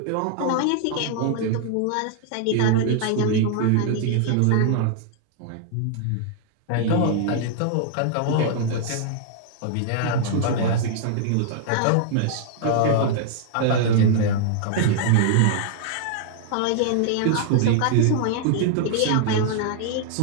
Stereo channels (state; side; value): different; both; correlation -0.01